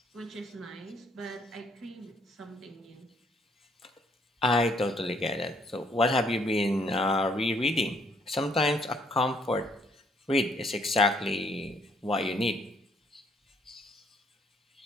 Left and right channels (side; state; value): both; normal; correlation 0.66